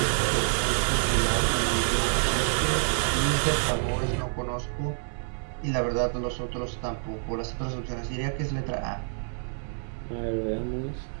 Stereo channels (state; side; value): silent; left; 60 dB below the other